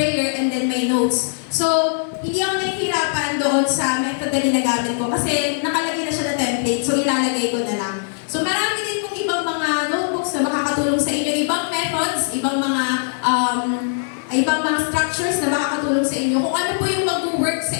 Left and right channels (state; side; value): silent; right; 65 dB below the other